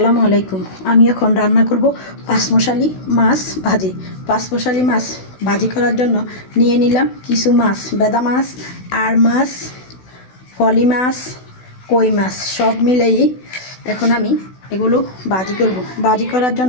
আলাইকুম। আমি এখন রান্না করব পাঁচমশালি মাছ ভাজি। পাঁচমশালি মাছ ভাজি করার জন্য নিয়ে নিলাম কিছু মাছ, বেদা মাছ, আর মাছ, ফলি মাছ, কই মাছ সব মিলেই এখন আমি এগুলো ভাজি করব। ভাজি করার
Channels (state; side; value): late; right; 16 ms